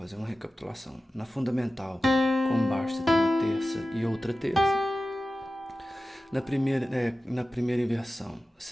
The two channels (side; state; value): both; normal; correlation 0.95